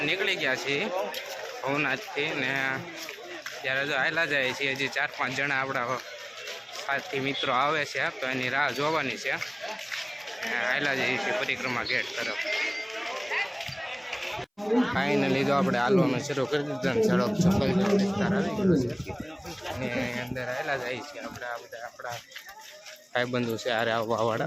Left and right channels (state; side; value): identical; both; correlation 1.00